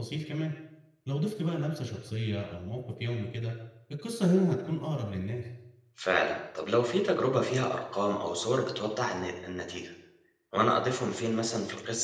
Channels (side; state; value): both; identical; correlation 1.00